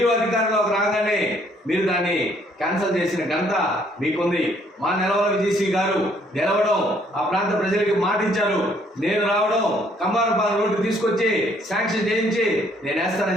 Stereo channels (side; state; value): both; normal; correlation 0.65